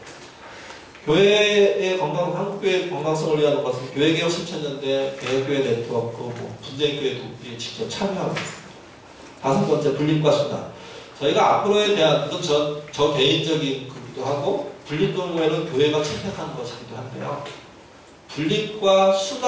교회의 한국교회의 건강성을 위한 것은 교회개혁 실천연대, 개혁교회 네트워크, 분쟁교회 돕기에 직접 참여하고 있습니다. 다섯 번째, 분립과 수단. 저희가 앞으로에 대한, 이건 저 개인적인 거기도 하고, 분립 경우에는 교회가 채택하는 것이기도 한데요. 분립과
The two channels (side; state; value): both; identical; correlation 1.00